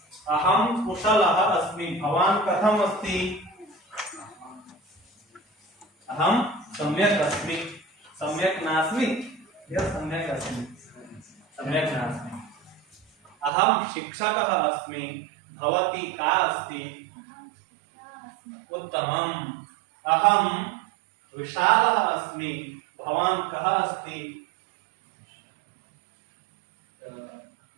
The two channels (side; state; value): left; drops out; at 13.5 s